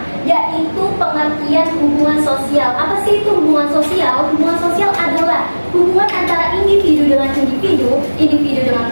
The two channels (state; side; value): inverted; both; correlation -1.00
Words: yaitu pengertian hubungan sosial. Apa sih itu hubungan sosial? Hubungan sosial adalah hubungan antara individu dengan individu, individu dengan